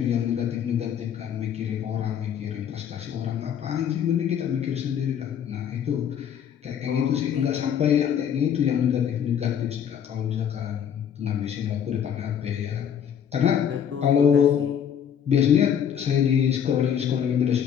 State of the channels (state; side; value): quieter; right; 8.6 dB